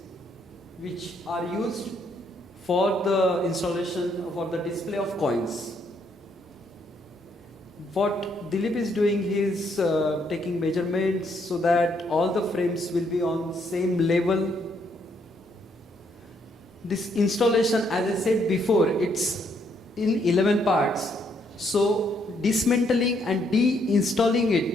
which are used for the installation, for the display of coins. What Dilip is doing, he is taking measurements so that all the frames will be on same level. This installation, as I said before, it's in 11 parts. So dismantling and de-installing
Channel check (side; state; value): both; normal; correlation 0.72